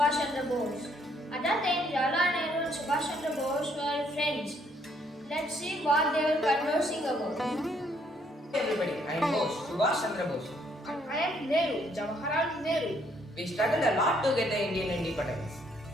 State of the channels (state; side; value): normal; both; correlation 0.68